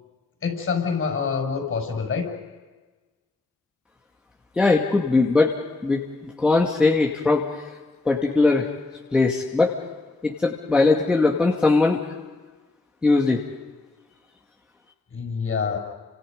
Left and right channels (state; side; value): quieter; right; 3.3 dB